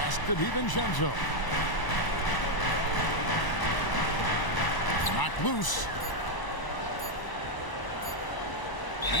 to DiVincenzo. Knocked loose.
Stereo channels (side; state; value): right; late; 1.0 ms